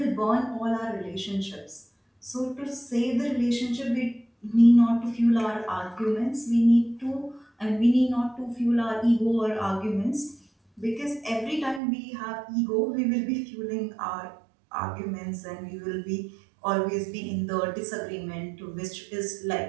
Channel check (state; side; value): drops out; left; at 11.8 s